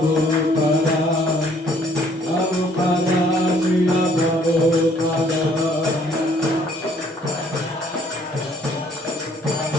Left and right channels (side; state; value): both; normal; correlation 0.62